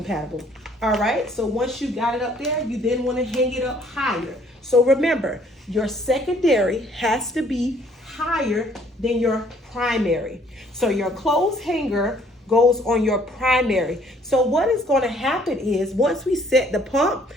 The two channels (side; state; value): both; normal; correlation 0.61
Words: All right, so once you got it up there, you then want to hang it up higher. So remember, your secondary has to be higher than your primary. So your clothes hanger goes on your primary. So what is going to happen is once we set the pump,